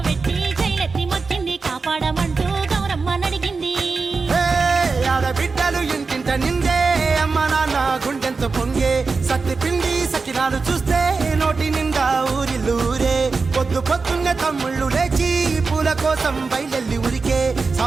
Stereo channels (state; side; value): quieter; left; 4.4 dB